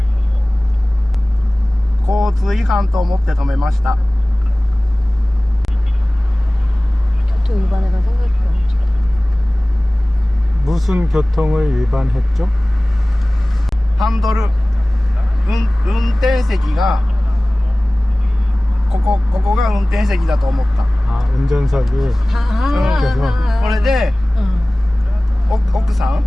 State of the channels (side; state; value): both; normal; correlation 0.98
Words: 交通違反と思って止めました。 교통 위반해가 생각이 안 나. 무슨 교통을 위반했죠? ハンドル、運転席がここが運転席だと思った。 아, 운전석이. これで 奥さん